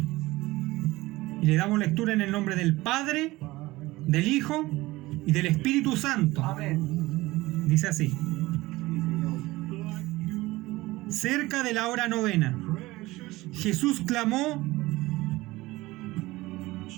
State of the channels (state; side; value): quieter; left; 19.5 dB